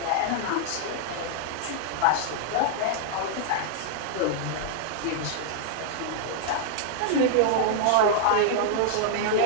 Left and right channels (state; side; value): different; both; correlation -0.01